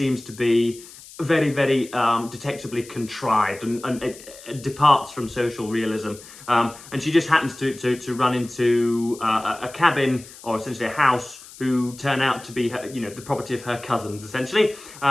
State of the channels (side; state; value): left; noise; hiss, 18 dB below the sound